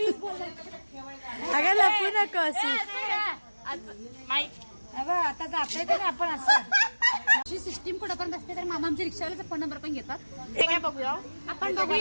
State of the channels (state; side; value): inverted; both; correlation -1.00